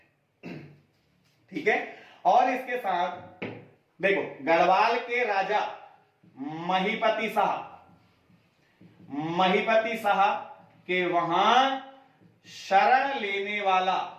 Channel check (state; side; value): identical; both; correlation 1.00